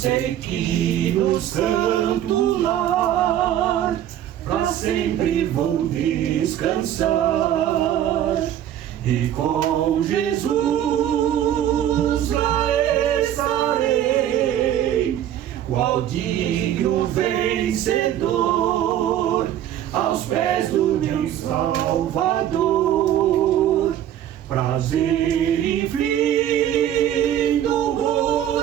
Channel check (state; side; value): quieter; left; 11.2 dB